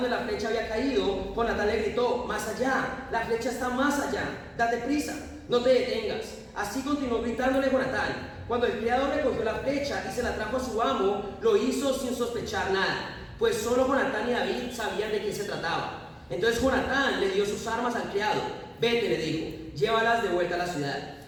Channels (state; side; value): identical; both; correlation 1.00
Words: la flecha había caído, Jonatán le gritó: más allá, la flecha está más allá, date prisa, no te detengas. Así continuó gritándole Jonatán. Cuando el criado recogió la flecha y se la trajo a su amo, lo hizo sin sospechar nada, pues solo Jonatán y David sabían de qué se trataba. Entonces Jonatán le dio sus armas al criado. Vete, le dijo, llévalas de vuelta a la ciudad.